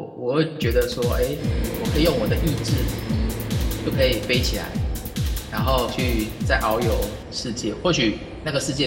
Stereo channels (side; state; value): both; identical; correlation 1.00